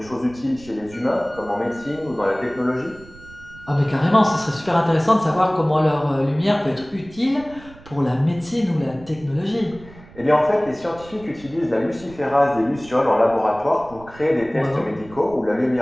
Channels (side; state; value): right; noise; rumble, 21 dB below the sound